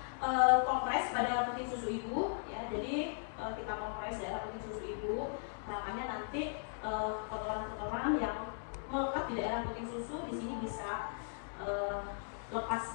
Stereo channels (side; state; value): right; silent; digital silence